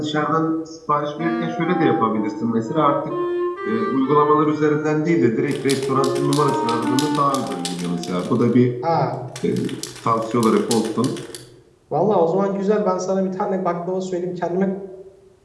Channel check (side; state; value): both; identical; correlation 1.00